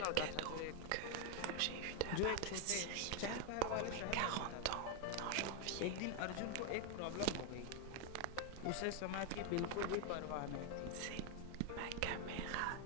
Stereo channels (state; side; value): different; both; correlation 0.01